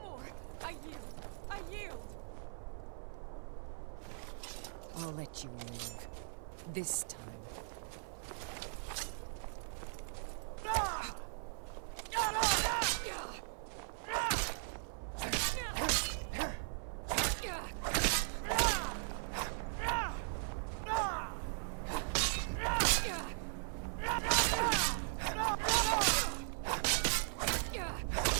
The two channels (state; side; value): silent; left; 52 dB below the other